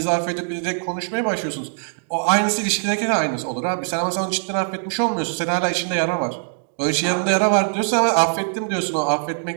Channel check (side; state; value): left; silent; digital silence